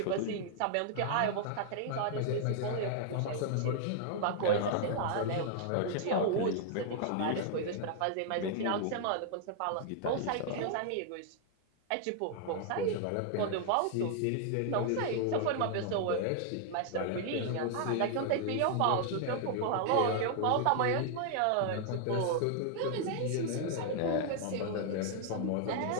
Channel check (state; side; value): different; both; correlation -0.01